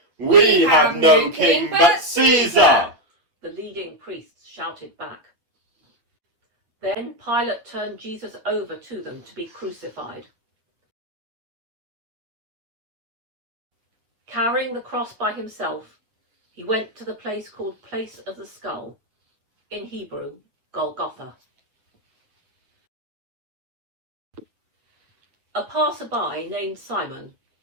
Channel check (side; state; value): left; late; 8.7 ms